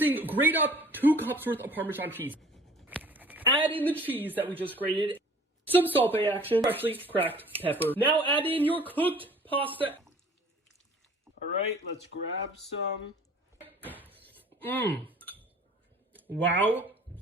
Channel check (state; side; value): normal; both; correlation 0.50